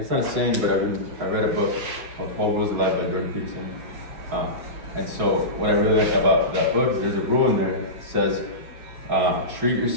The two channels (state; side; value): late; left; 6.1 ms